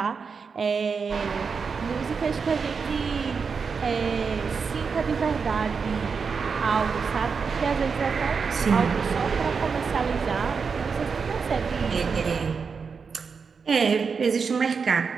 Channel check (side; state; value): left; quieter; 5.5 dB